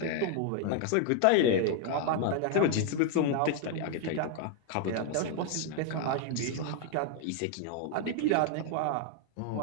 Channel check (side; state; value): both; different; correlation 0.00